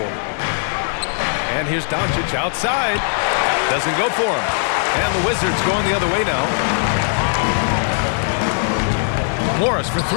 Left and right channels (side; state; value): right; silent; 66 dB below the other